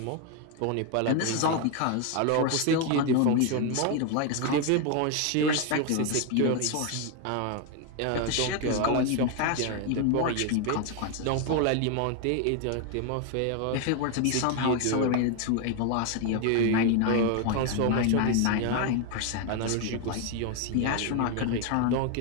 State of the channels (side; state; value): both; different; correlation 0.01